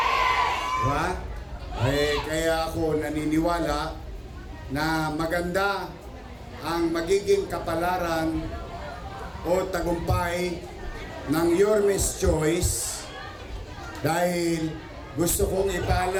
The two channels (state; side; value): identical; both; correlation 1.00